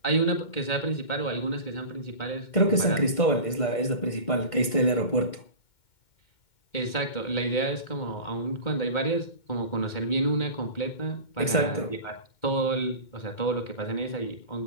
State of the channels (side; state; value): right; late; 2.1 ms